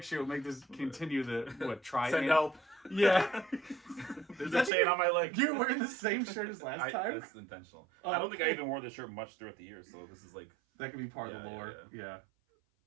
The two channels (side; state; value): left; drops out; at 4.7 s